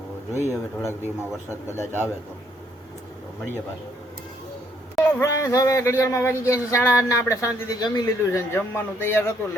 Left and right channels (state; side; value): normal; both; correlation 0.69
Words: જોઈએ હવે થોડાક દિવસમાં વરસાદ કદાચ આવે તો મળીએ પાછું. ફ્રેન્ડ્સ, હવે ઘડિયાળમાં વાગી ગયા છે 8:30 ને આપણે શાંતિથી જમી લીધું છે. જમવાનું તૈયાર હતું